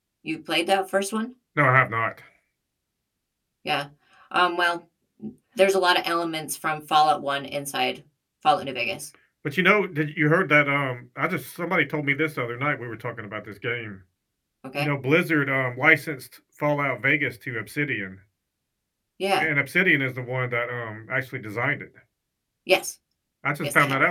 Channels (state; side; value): identical; both; correlation 1.00